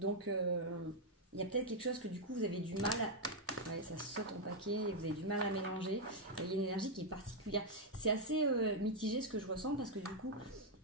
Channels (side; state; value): both; normal; correlation -0.01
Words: il y a peut-être quelque chose que du coup, vous avez du mal à... Ouais, ça saute en paquet et vous avez du mal à mélanger. Il y a une énergie qui est particulière. C'est assez mitigé ce que je ressens parce que du coup,